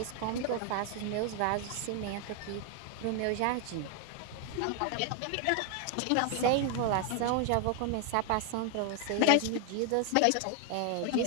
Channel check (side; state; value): both; different; correlation 0.01